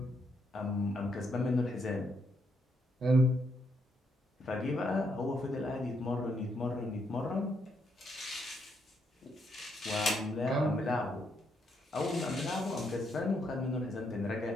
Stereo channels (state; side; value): normal; both; correlation 0.76